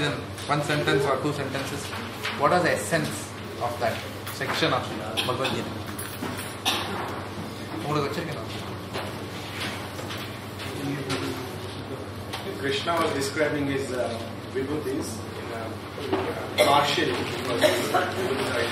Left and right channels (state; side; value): identical; both; correlation 1.00